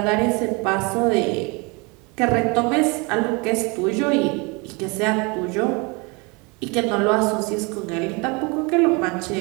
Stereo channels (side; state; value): left; quieter; 28.8 dB